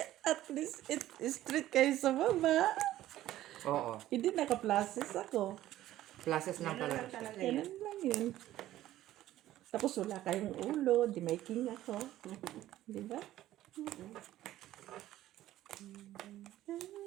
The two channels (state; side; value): quieter; left; 14.1 dB